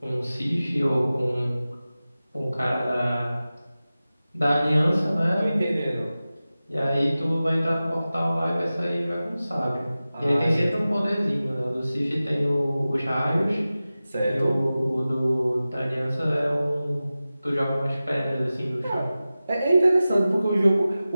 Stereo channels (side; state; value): both; inverted; correlation -0.96